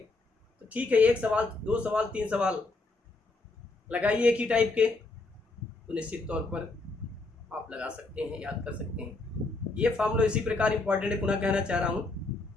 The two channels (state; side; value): quieter; right; 3.3 dB